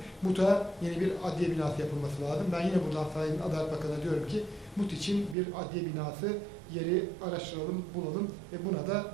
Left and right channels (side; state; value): left; drops out; at 5.4 s